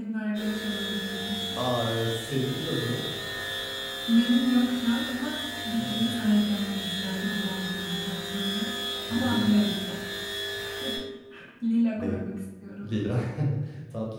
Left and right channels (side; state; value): both; identical; correlation 1.00